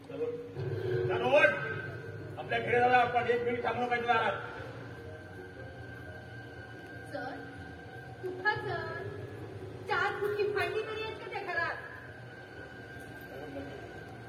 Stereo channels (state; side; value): identical; both; correlation 1.00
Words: चलो आपल्या घरी जाऊया आपण. 1 मिनिट थांबलो पाहिजे दारात. सर कुठं सर 4 फुटकी भांडी तरी आहेत का त्या घरात.